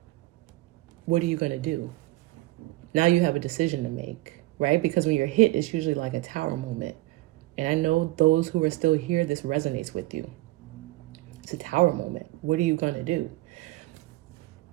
what are you going to do? Now you have a decision to make, right? Because when you're hit, it's usually like a tower moment. And I know those who are still here, this resonates with you. It's a tower moment. What are you going to do?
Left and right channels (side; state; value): left; quieter; 19.3 dB